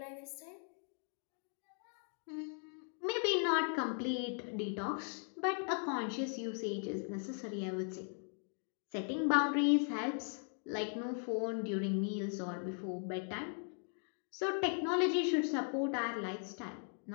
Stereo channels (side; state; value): right; silent; 52 dB below the other